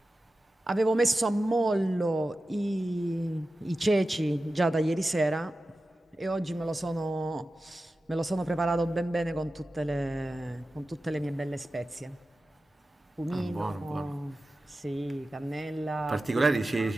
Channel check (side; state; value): both; normal; correlation 0.94